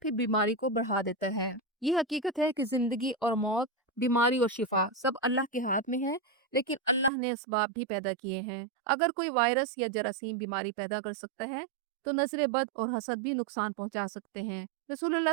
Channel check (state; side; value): drops out; left; at 7.1 s